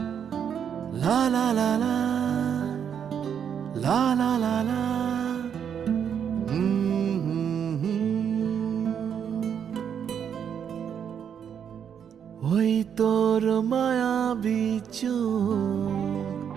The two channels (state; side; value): quieter; left; 8.1 dB